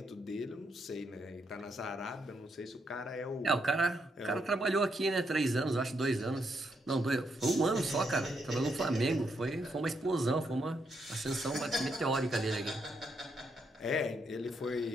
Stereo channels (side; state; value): both; normal; correlation 0.78